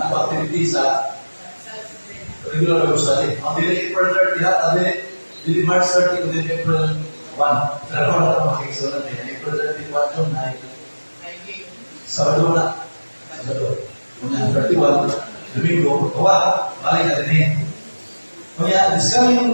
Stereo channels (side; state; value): both; inverted; correlation -1.00